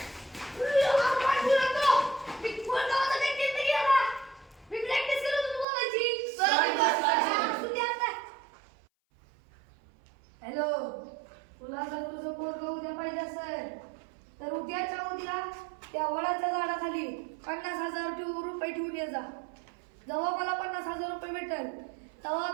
हॅलो तुला जर तुझं पोरगं उद्या पाहिजे असेल तर उद्याच्या उद्या त्या वडाच्या झाडाखाली 50,000 रुपये ठेवून ये जा. जेव्हा मला 50,000 रुपये भेटेल तेव्हा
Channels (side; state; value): left; drops out; at 5.7 s